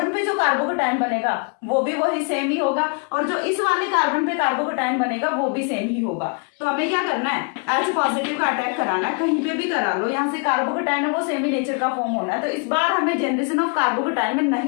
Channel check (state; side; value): quieter; right; 37.0 dB